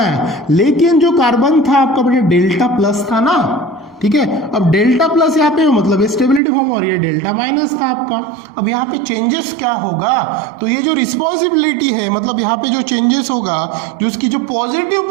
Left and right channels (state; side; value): drops out; left; at 6.4 s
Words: लेकिन जो कार्बन था आपका बेटा डेल्टा प्लस था ना, ठीक है। अब डेल्टा प्लस यहाँ पे मतलब स्टेबिलिटी फॉर्म, और ये डेल्टा माइनस था आपका। अब यहाँ पे चेंजेस क्या होगा? तो ये जो रिस्पॉन्सिबिलिटी है, मतलब यहाँ पे जो चेंजेस होगा, जो उसकी जो पॉजिटिव